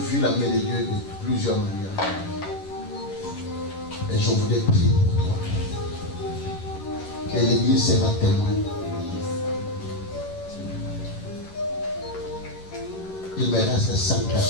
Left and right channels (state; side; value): late; right; 11 ms